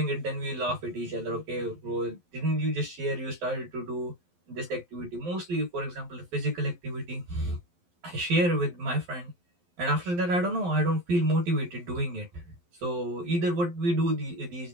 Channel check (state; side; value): late; left; 12 ms